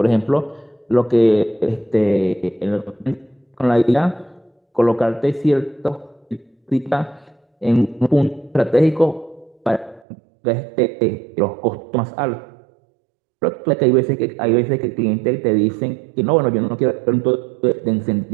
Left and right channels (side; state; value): left; drops out; at 10.1 s